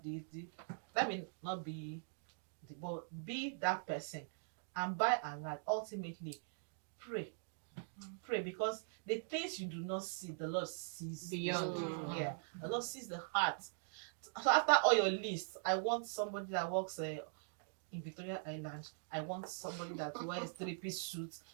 this? That may not be, but be that person. And by and large, ultimately, pray. Pray, because the things you do not see, the Lord sees Beyond. Yeah, the Lord sees the heart. So after all your lists, I want somebody that works in Victoria Island. I want somebody that wears 3-piece suits.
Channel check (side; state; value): left; silent; digital silence